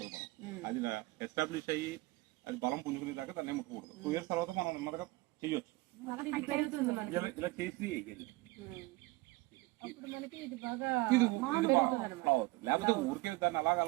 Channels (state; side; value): quieter; left; 21.9 dB